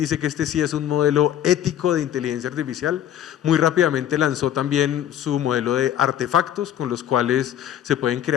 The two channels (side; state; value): right; quieter; 10.8 dB